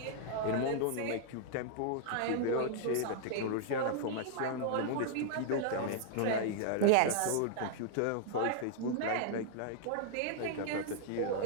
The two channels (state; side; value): different; both; correlation -0.01